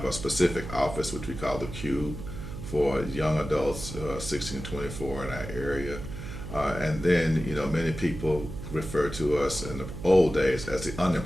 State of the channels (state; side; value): noise; right; hum, 9 dB below the sound